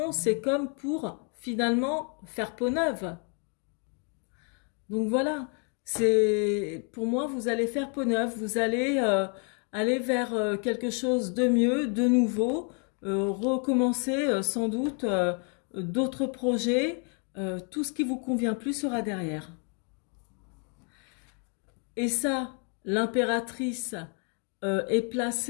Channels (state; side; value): quieter; right; 39.5 dB